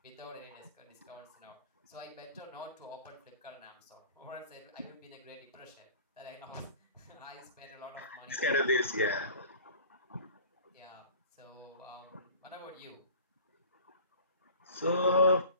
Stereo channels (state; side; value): inverted; both; correlation -0.44